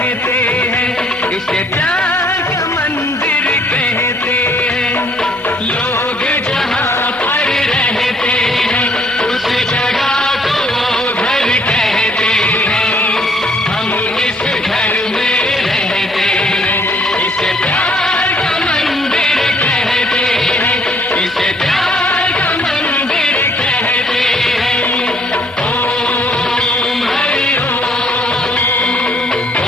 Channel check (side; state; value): both; normal; correlation 0.64